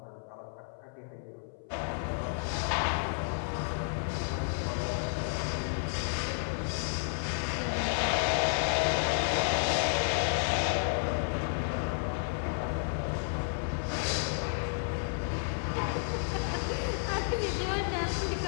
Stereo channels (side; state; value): right; silent; 57 dB below the other